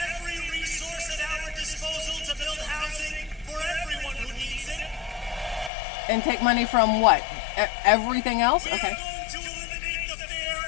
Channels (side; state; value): right; drops out; at 5.7 s